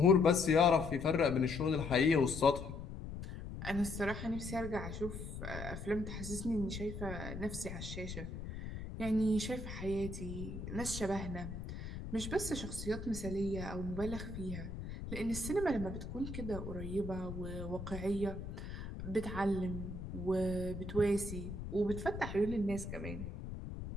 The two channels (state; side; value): noise; left; rumble, 8 dB below the sound